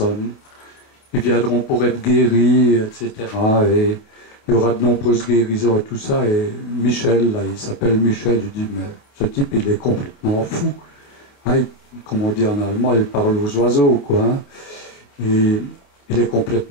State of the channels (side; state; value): right; late; 28 ms